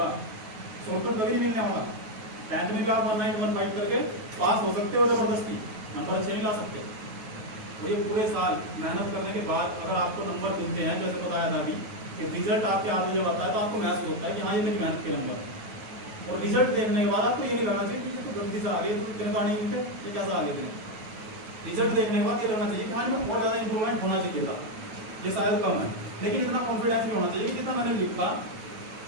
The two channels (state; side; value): late; left; 9.3 ms